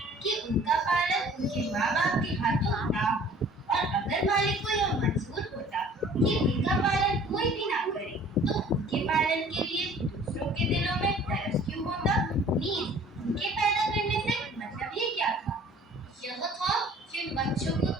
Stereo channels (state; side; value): normal; both; correlation 0.51